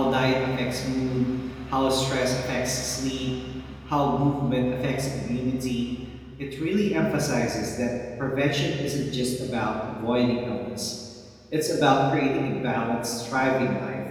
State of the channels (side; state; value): both; identical; correlation 1.00